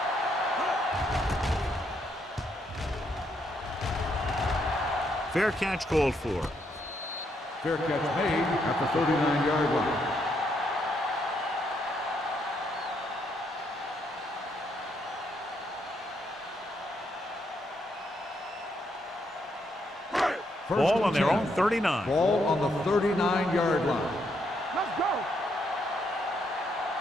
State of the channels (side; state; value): both; normal; correlation 0.75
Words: Fair catch called for. Fair catch made at the 39-yard line. Ball on their own 39. Ball on the 39-yard line. Let's go.